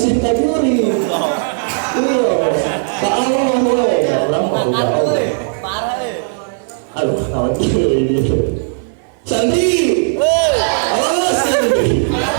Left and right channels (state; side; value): silent; left; 64 dB below the other